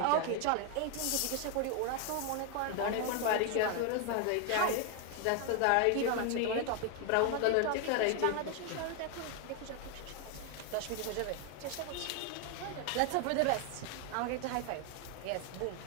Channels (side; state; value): both; different; correlation 0.01